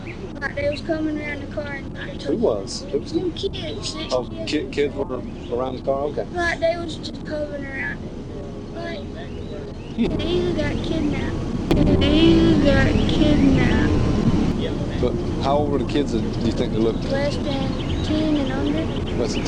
Like they was coming around the car and Who was? them kids. Oh, kids were around the car? Okay. Like they was just coming around it. Like they either got kidnapped. But how old were the kids that you think they looked? Less than 10 and under. Less than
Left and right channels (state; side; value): identical; both; correlation 1.00